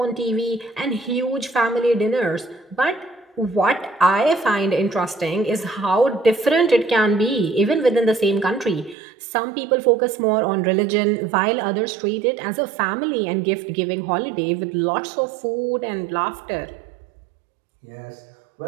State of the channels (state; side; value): drops out; left; at 9.0 s